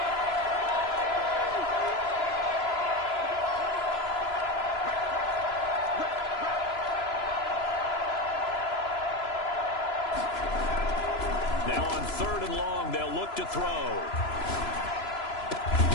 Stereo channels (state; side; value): late; right; 3.0 ms